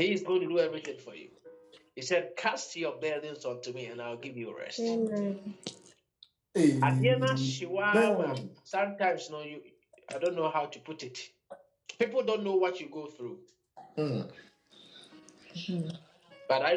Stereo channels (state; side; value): identical; both; correlation 1.00